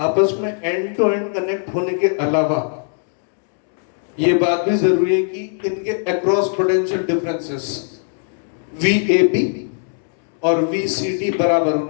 में एंड टू एंड कनेक्ट होने के अलावा ये बात भी जरूरी है कि इनके अक्रॉस पोटेंशियल डिफरेंसेस VAB और VCD बराबर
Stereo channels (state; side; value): silent; right; 66 dB below the other